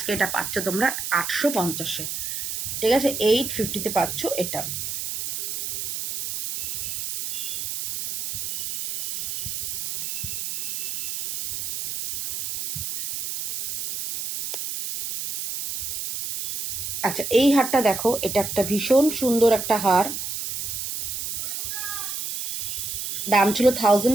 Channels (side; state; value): right; noise; hiss, 4 dB below the sound